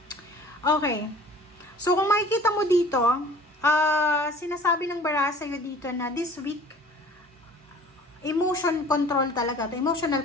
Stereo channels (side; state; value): both; normal; correlation 0.47